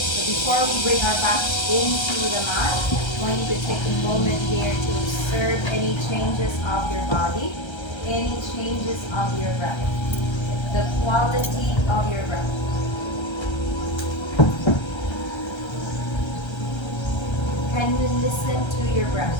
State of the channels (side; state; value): right; late; 1.3 ms